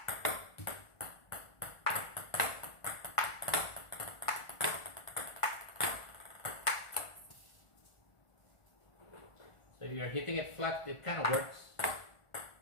So if you're hitting it flat, it kind of works.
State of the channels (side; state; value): right; late; 1.4 ms